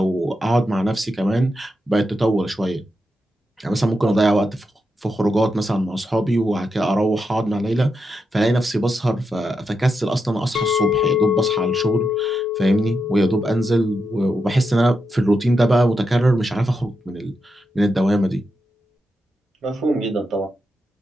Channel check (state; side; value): normal; both; correlation 0.85